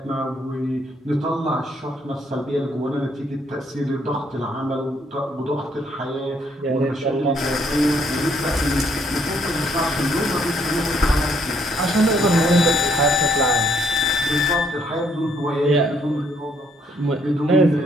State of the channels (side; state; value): both; normal; correlation 0.69